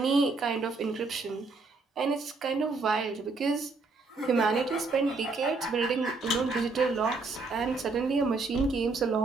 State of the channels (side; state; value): left; quieter; 3.8 dB